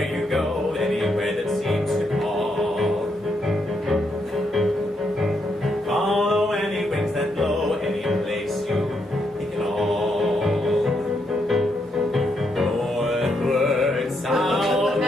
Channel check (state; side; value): normal; both; correlation 0.78